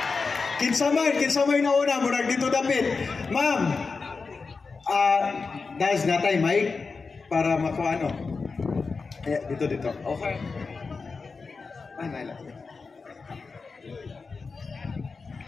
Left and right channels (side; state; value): right; quieter; 4.5 dB